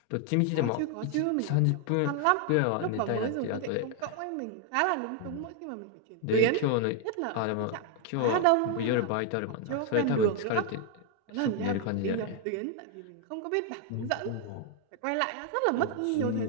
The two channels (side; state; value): both; different; correlation 0.00